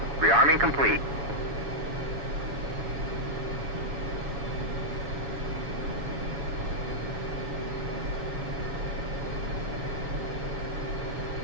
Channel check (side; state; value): left; late; 7.1 ms